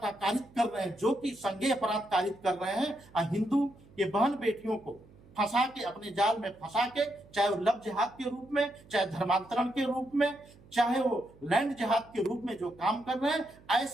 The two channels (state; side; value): noise; right; hum, 25 dB below the sound